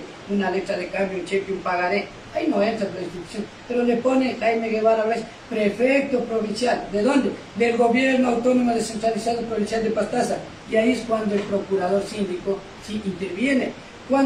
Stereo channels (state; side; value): identical; both; correlation 1.00